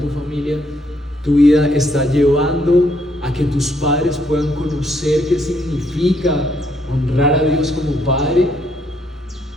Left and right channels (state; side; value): normal; both; correlation 0.71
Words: familia? ¿Tu vida está llevando a que tus padres puedan conocer qué significa honrar a Dios como Padre?